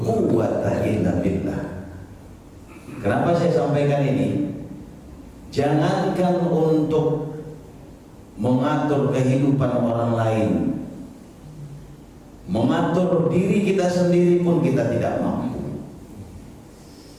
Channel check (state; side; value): identical; both; correlation 1.00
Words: quwwata illa billah. Kenapa saya sampaikan ini? Jangankan untuk mengatur kehidupan orang lain, mengatur diri kita sendiri pun kita tidak mampu.